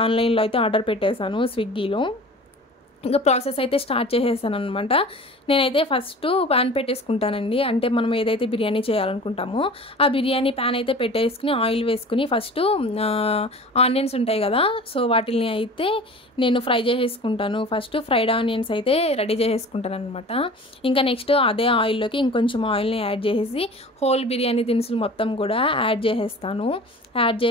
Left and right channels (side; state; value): both; normal; correlation 0.40